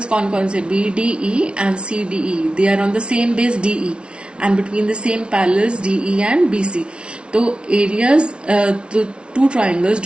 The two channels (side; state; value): left; late; 0.058 ms